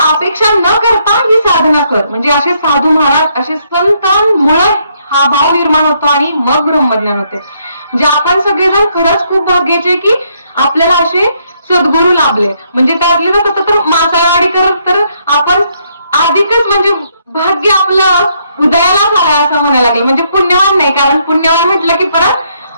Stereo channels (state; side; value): inverted; both; correlation -0.72